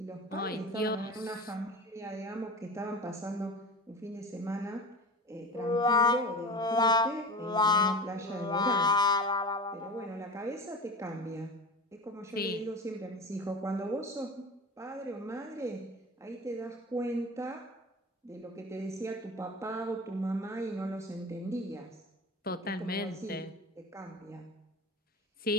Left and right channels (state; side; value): normal; both; correlation 0.31